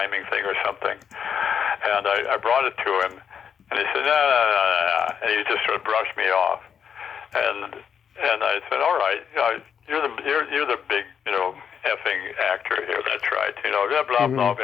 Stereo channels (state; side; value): quieter; right; 7.6 dB